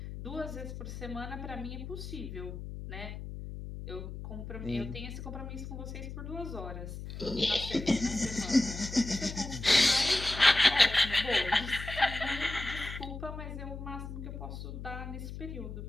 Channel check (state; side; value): noise; left; hum, 9 dB below the sound